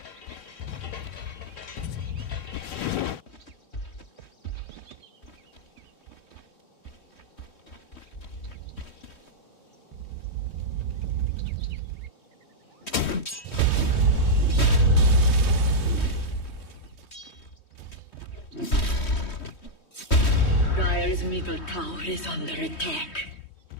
Dire's middle tower is under attack.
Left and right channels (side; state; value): right; late; 3.1 ms